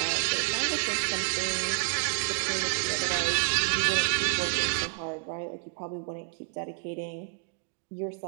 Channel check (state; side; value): silent; left; 58 dB below the other